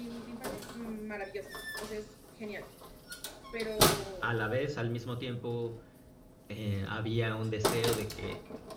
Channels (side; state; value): both; identical; correlation 1.00